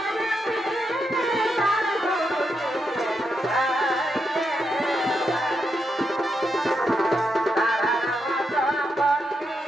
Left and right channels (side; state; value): both; normal; correlation 0.83